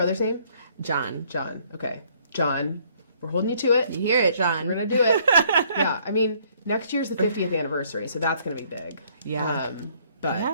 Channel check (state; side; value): inverted; both; correlation -0.64